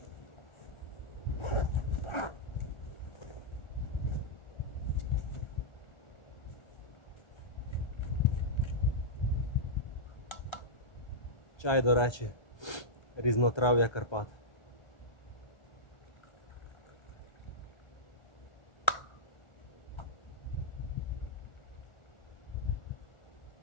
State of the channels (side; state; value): right; late; 1.3 ms